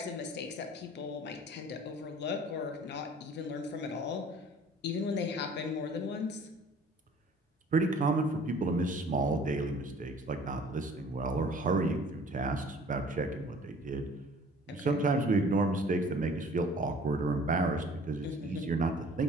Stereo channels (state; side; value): normal; both; correlation 0.51